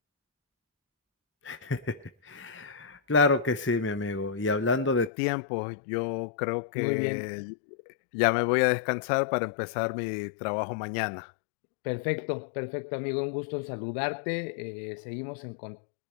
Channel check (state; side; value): drops out; right; at 5.1 s